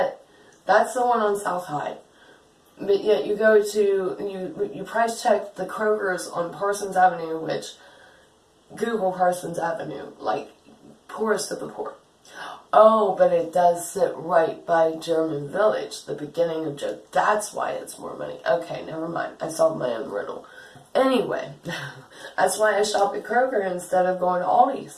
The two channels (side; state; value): both; identical; correlation 1.00